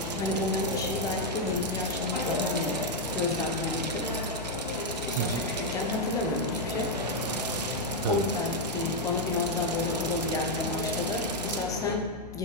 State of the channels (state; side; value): noise; left; hum, 15 dB below the sound